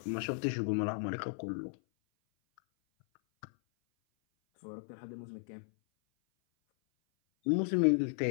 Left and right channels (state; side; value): silent; right; 55 dB below the other